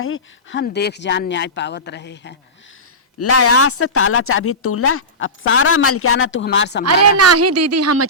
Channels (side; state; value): both; normal; correlation -0.19